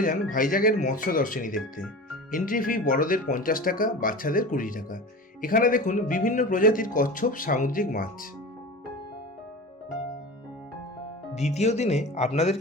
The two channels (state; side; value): normal; both; correlation 0.33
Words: যান ভাইজ্যাকের মৎস্য দর্শনী দেখতে। এন্ট্রি ফি বড়দের 50 টাকা, বাচ্চাদের 20 টাকা। এখানে দেখুন বিভিন্ন প্রজাতির কচ্ছপ সামুদ্রিক মাছ। দ্বিতীয় দিনে